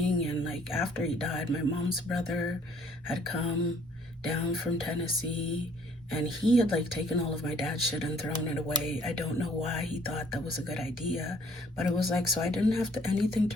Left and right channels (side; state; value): both; normal; correlation 0.60